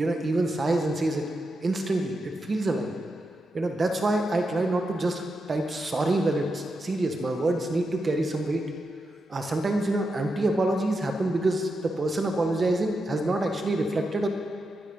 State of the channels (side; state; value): both; normal; correlation 0.87